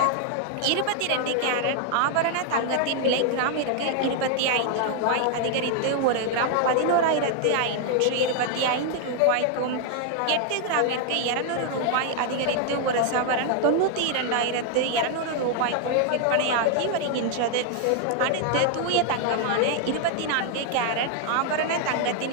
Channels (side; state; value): both; different; correlation 0.00